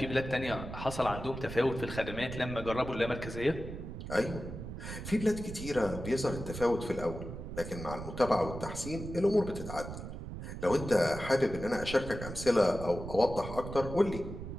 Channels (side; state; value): right; noise; rumble, 9 dB below the sound